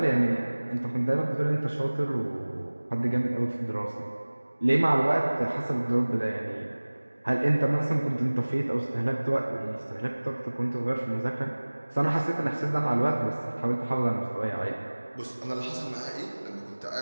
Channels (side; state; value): both; inverted; correlation -1.00